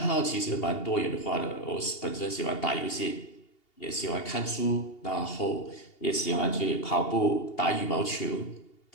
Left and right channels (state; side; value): late; right; 2.8 ms